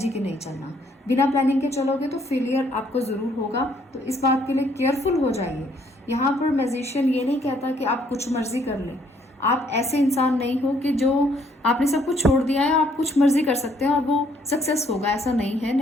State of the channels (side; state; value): both; normal; correlation 0.66